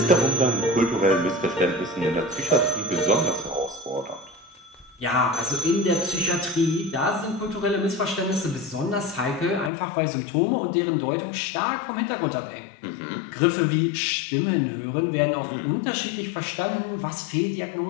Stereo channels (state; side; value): drops out; right; at 9.7 s